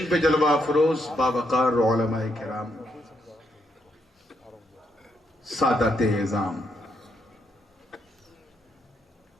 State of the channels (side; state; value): both; normal; correlation 0.78